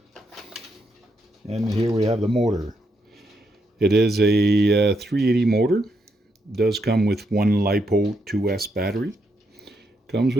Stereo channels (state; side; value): normal; both; correlation 0.79